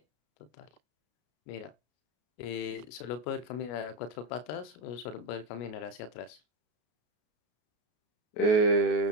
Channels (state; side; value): late; right; 33 ms